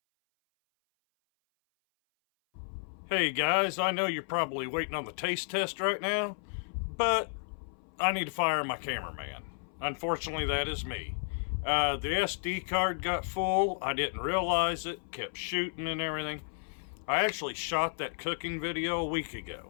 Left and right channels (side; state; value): right; silent; 56 dB below the other